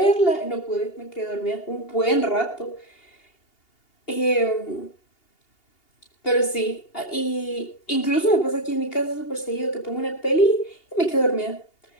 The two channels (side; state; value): right; late; 2.8 ms